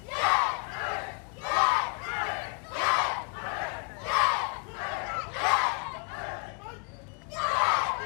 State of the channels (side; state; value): right; quieter; 39.6 dB